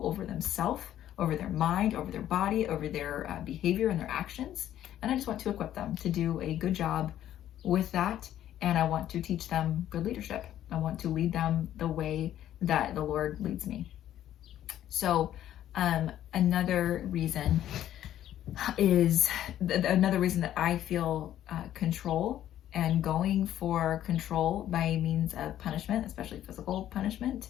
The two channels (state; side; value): quieter; right; 11.8 dB